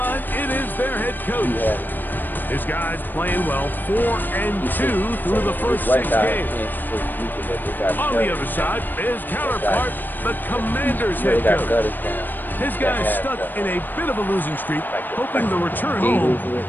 it is their head coach. His guys playing well, 4-2 through the first 6 games. On the other side, his counterpart, the Commanders head coach. His guys stuck in a bit of a losing streak, hoping the return home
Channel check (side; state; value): right; late; 0.091 ms